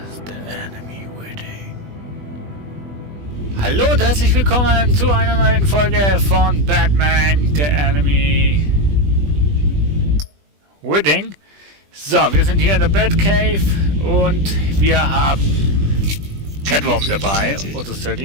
the enemy waiting. Hallo und herzlich willkommen zu einer neuen Folge von Batman, the enemy waiting. So, wir sind hier in der Batcave und wir haben Catwoman dabei, oder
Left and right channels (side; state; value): left; late; 20 ms